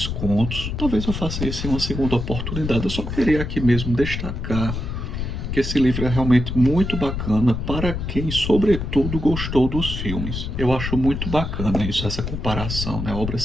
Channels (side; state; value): left; noise; rumble, 4 dB below the sound